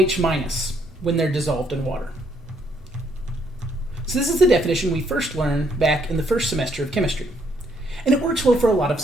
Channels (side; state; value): both; normal; correlation 0.70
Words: minus when they're dissolved in water. So this is the definition we first learned back in the first semester of chemistry. And it works well for a lot of